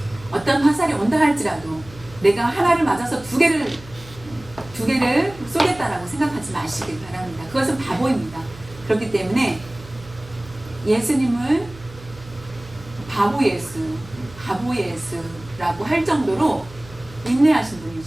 어떤 화살이 온다 할지라도 내가 하나를 맞아서 두 개를 쏘겠다라고 생각하지 마시길 바랍니다. 그것은 바보입니다. 그렇기 때문에 예수님을 바보 예수라고 할 정도로 인내하신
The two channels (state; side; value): noise; right; hum, 19 dB below the sound